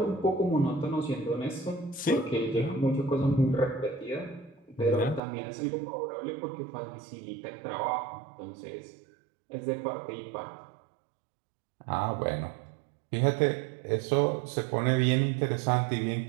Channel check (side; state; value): left; drops out; at 5.2 s